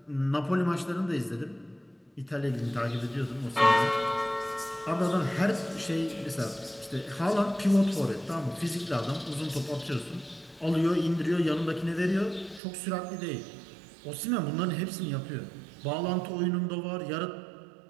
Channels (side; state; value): left; drops out; at 12.6 s